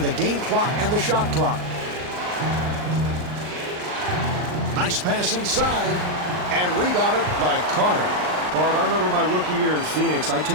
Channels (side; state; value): left; late; 39 ms